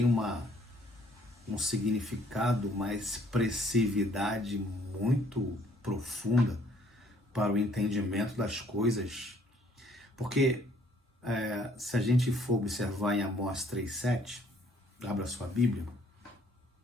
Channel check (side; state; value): both; normal; correlation 0.62